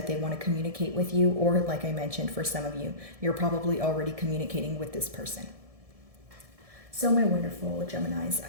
they want to communicate with you, or like I mentioned, for some of you, you're probably already communicating with this person. So, my wonderful Geminis,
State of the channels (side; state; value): left; late; 1.7 ms